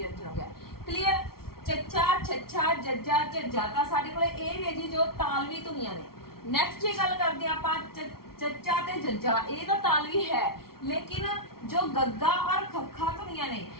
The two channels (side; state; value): right; late; 0.94 ms